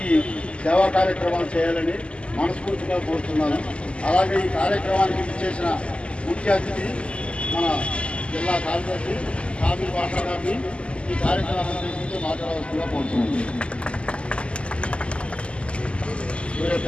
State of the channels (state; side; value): late; right; 0.055 ms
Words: సేవా కార్యక్రమాలు చేయాలని మనస్ఫూర్తిగా కోరుతున్నాను. అలాగే ఈ కార్యక్రమానికి ఇచ్చేసిన ముఖ్య అతిథి మన జిల్లా కార్యదర్శి కాపీ భాష గారిని ఈ కార్యక్రమాన్ని గురించి మాట్లాడవలసిందిగా కోరుతున్నాను.